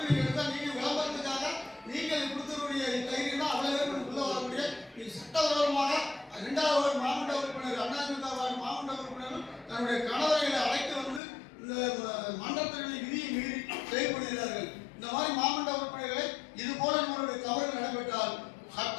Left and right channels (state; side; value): drops out; right; at 11.2 s